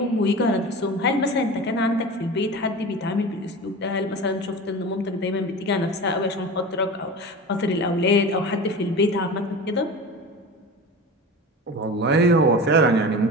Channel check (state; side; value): normal; both; correlation 0.31